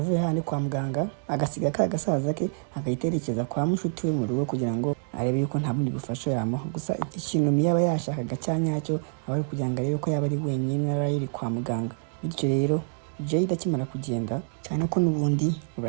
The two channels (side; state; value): left; silent; digital silence